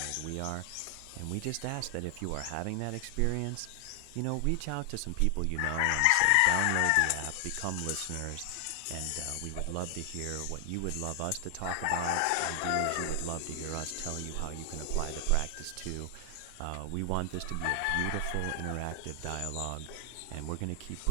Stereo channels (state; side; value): different; both; correlation 0.00